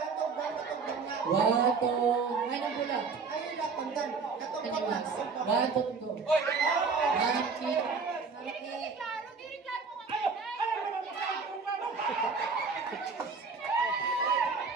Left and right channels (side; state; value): left; quieter; 4.9 dB